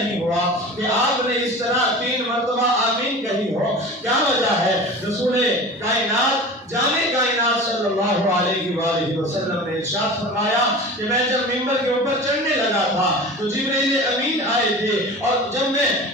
ہوا کہ آپ نے اس طرح 3 مرتبہ آمین کہی ہو, کیا وجہ ہے؟ رسول کائنات جامع کائنات صلی اللہ علیہ وآلہ وسلم نے ارشاد فرمایا کہ میں جب منبر کے اوپر چڑھنے لگا تھا تو جبریل امین آئے تھے, اور جب میں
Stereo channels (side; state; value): both; normal; correlation 0.35